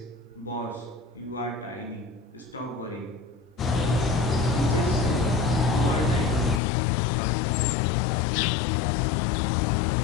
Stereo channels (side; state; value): right; drops out; at 6.6 s